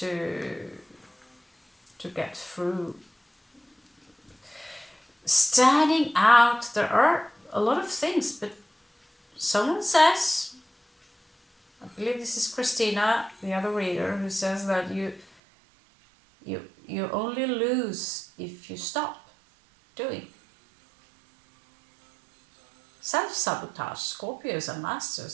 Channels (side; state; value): left; drops out; at 15.2 s